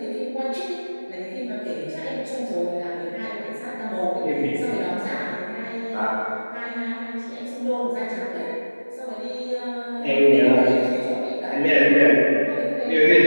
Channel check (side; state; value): both; inverted; correlation -1.00